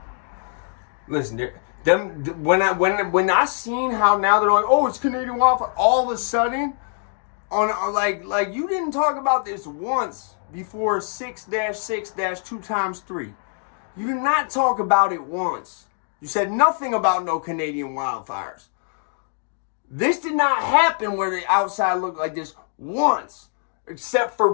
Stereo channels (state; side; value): silent; right; 58 dB below the other